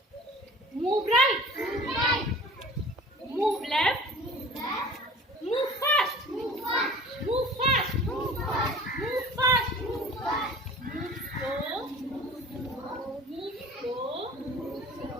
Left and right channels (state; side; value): normal; both; correlation 0.43